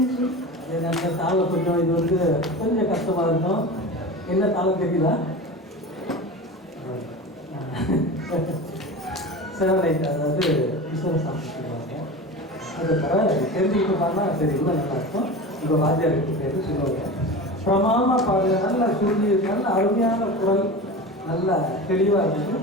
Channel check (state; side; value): normal; both; correlation 0.30